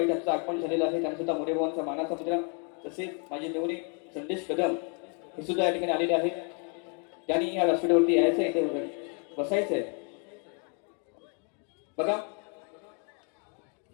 यांचं आगमन झालेलं आहे. त्यांना सुद्धा मोरेभावांचा मानाचा मुद्रा तसेच माझे मेवणे संदेश कदम हे सुद्धा या ठिकाणी आलेले आहेत. त्यांनी या व्यासपीठावरती यायचं आहे, इथे बसायचं आहे. बघा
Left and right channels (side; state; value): right; quieter; 38.9 dB